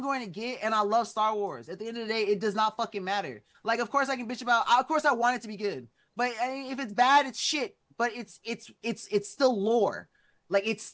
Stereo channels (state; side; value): identical; both; correlation 1.00